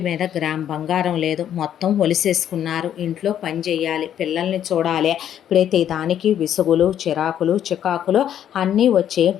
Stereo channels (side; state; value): right; quieter; 10.1 dB